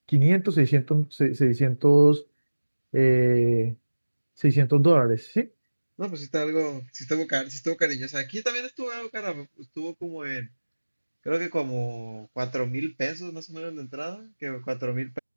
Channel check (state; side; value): inverted; both; correlation -1.00